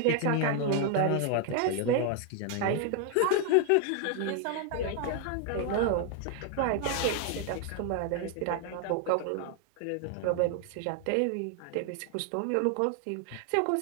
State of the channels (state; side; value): different; both; correlation 0.00